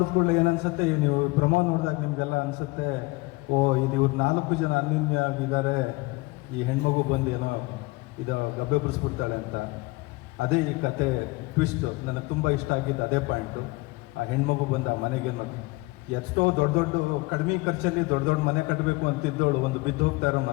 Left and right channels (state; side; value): quieter; right; 22.9 dB